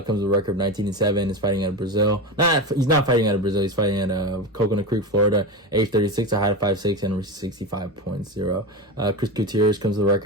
with a record of 19-7. Is fighting out of Brazil. He's not fighting out of Brazil. He's fighting out of Coconut Creek, Florida. Age 36, a height of 5'6", and 65.0. Chris Gutierrez comes with a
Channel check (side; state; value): both; normal; correlation 0.21